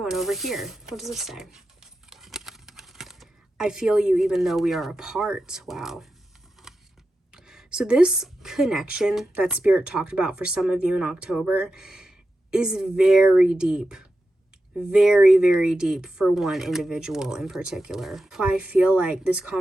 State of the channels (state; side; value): normal; both; correlation 0.90